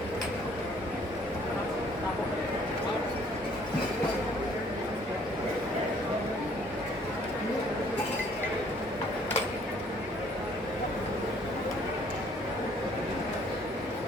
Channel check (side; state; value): both; normal; correlation 0.60